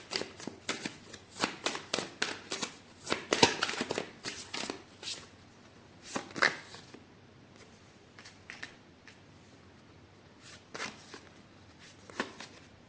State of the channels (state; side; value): identical; both; correlation 1.00